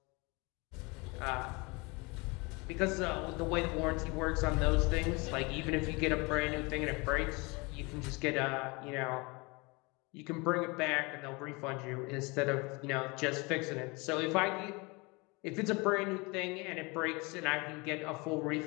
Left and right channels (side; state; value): right; quieter; 27.0 dB